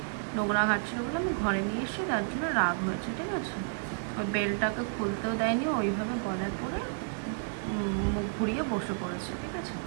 নোংরা ঘাটছিল বলে আমি ঘরে নিয়ে এসেছি, তার জন্য রাগ হয়েছে, ঠিক আছে। ওই বেলটাকে খুলতেও দেয়নি, ওইভাবে গলায় পরে মুখ ঘুরিয়ে বসে পড়েছে, ঠিক আছে।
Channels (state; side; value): silent; left; 57 dB below the other